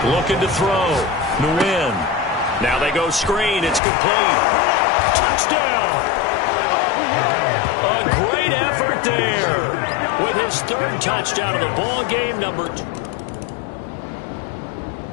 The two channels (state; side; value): drops out; right; at 3.8 s